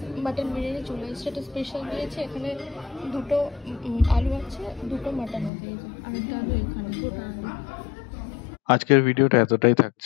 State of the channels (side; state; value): right; drops out; at 5.5 s